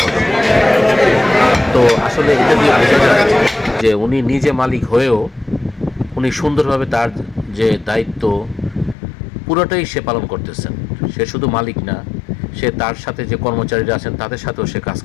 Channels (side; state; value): right; drops out; at 9.0 s